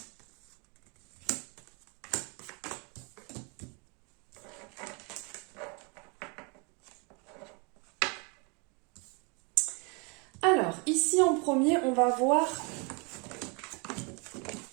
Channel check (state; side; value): quieter; left; 32.5 dB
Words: Alors, ici en premier, on va voir...